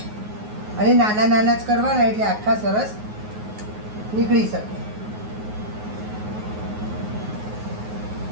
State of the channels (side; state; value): left; late; 9.5 ms